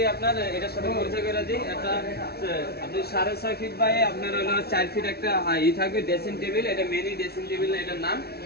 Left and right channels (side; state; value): right; late; 0.46 ms